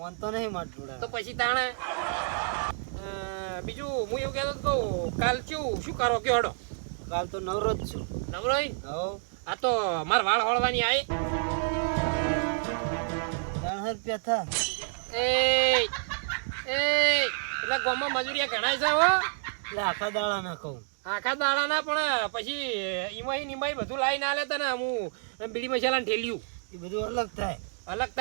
તો નહીં માર જોડે. તો પછી તાણે બીજું હું એવું કહેતો તો કાલ શું કરો કે હડો? કાલ તો નવરો જ છું. નવરો હોય ને? આ તો માર વાળ હળવાની આવી 300 રૂપિયા થા. એટલે ગામમાં મજૂરિયા ઘણા છે હો. એટલે આખા દાડા ના કહું. આખા દાડા ના પણ પછી ઈમાઈ બધું લાવીને આલે તને હું બીડી મસાલા ઠેલ્યું એ બધું અલગ થાય. અલગ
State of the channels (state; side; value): silent; left; digital silence